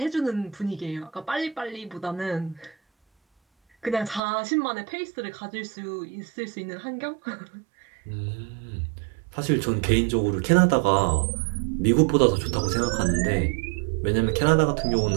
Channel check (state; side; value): drops out; left; at 4.2 s